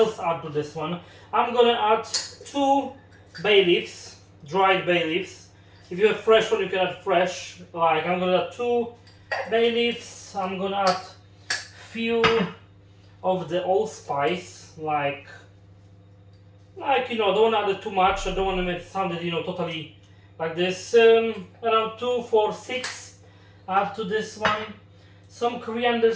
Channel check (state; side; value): identical; both; correlation 1.00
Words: add to this one. I'm gonna add 2 bay leaves, dried bay leaves. If you have fresh one, you can add fresh. Like I'm gonna add 2 bay leaves. I'm gonna add few of the allspice, like you know, don't want to add too much. I don't want to make it sound, you know, totally like this. Around 2, 4, 6. Add to this one some coriander